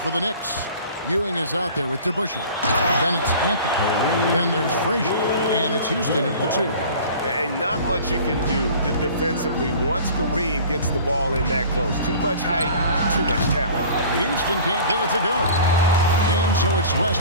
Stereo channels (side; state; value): both; inverted; correlation -0.43